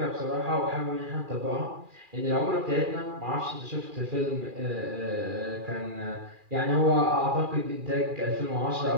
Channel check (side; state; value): left; late; 2.4 ms